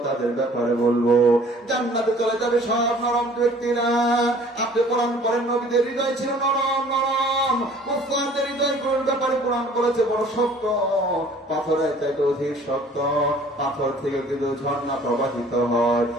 তাদের ব্যাপারে বলবো, জান্নাতে চলে যাবে সব নরম ব্যক্তিরা। আপনি কোরআন পড়েন, নবীদের হৃদয় ছিল নরম নরম, মুসলমানদের হৃদয় ব্যাপারে কোরআন করেছে বড় শক্ত, পাথরের চাইতে অধিক শক্ত। পাথর থেকে কিন্তু ঝর্ণা প্রবাহিত হয়,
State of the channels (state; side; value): normal; both; correlation 0.52